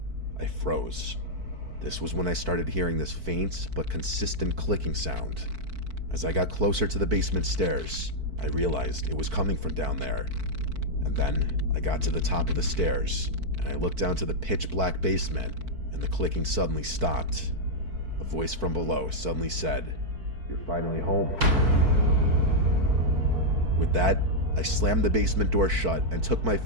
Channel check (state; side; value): late; left; 4.5 ms